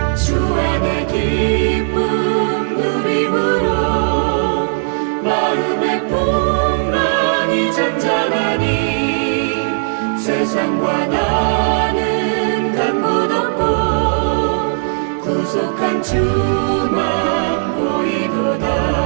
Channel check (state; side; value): silent; left; 68 dB below the other